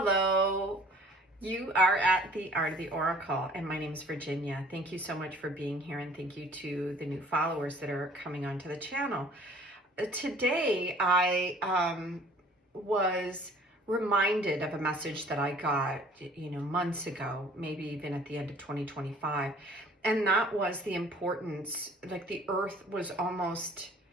you are at the Art of the Oracle, and my name is Virginia. Thank you so much for being here, and thank you to the new followers that are coming onto the channel. Today, I was reminded of a message that I got, months ago, maybe even at the end of 2025, and that was the importance, like the earth was almost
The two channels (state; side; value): normal; both; correlation 0.52